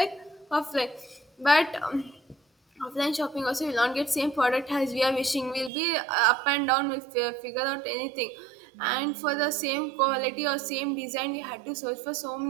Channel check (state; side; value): drops out; left; at 5.7 s